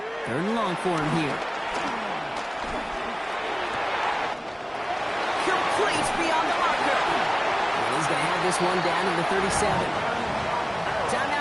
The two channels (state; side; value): identical; both; correlation 1.00